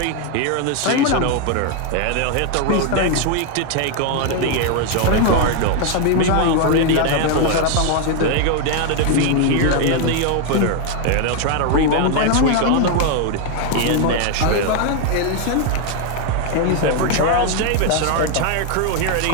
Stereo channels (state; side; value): different; both; correlation 0.01